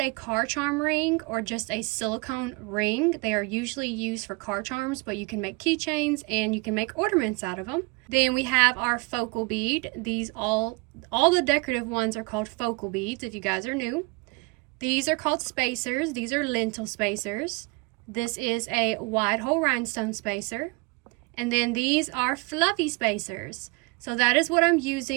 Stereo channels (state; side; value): quieter; left; 27.8 dB